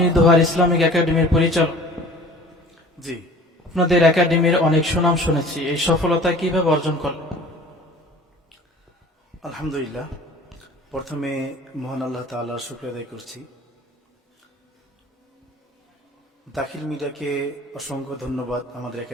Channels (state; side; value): normal; both; correlation 0.46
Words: দোহার ইসলামিক একাডেমির পরিচালক। জি, আপনাদের একাডেমির অনেক সুনাম শুনেছি, এই সফলতা কিভাবে অর্জন করলেন? আলহামদুলিল্লাহ। প্রথমে মহান আল্লাহ তাআলার শুকরিয়া আদায় করছি। দাখিল মিডিয়াকে অসংখ্য ধন্যবাদ আমাদের